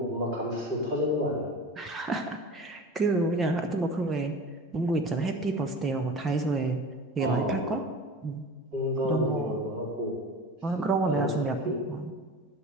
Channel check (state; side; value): normal; both; correlation 0.36